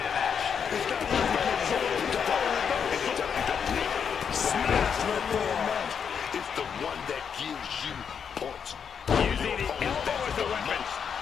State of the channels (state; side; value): quieter; right; 7.1 dB